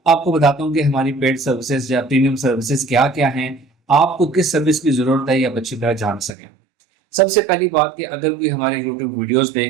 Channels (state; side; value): drops out; left; at 6.3 s